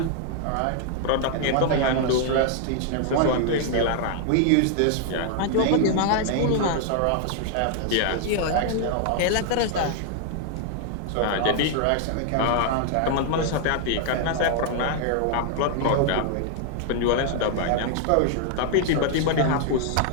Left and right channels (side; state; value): both; different; correlation 0.00